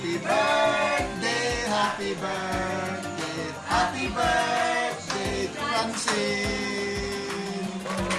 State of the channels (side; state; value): both; identical; correlation 1.00